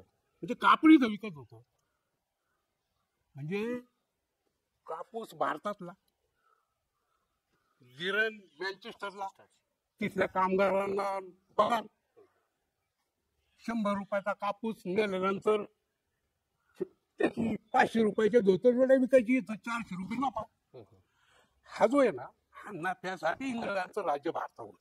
म्हणजे कापड इथं विकत होतं. म्हणजे कापूस भारतातला, गिरण मँचेस्टरला, तिथल्या कामगारांना पगार. 100 रुपयाचा कापूस नेल्यानंतर त्याची 500 रुपयाच्या धोतर विकायची, 400 रुपये नफा. हा जो आहे ना, हा नफ्यासाठी इंग्रजांचं राज्य भारतावर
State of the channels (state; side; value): identical; both; correlation 1.00